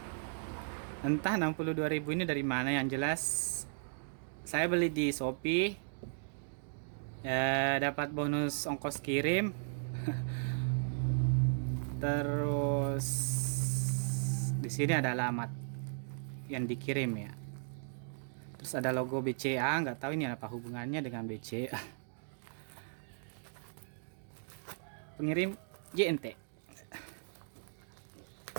Entah 62.000 ini dari mana, yang jelas saya beli di Shopee. Ya, dapat bonus ongkos kirim. Terus di sini ada alamat yang dikirim ya. Terus ada logo BCA, nggak tahu ini apa hubungannya dengan BCA. Pengirim JNT.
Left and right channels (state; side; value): silent; left; digital silence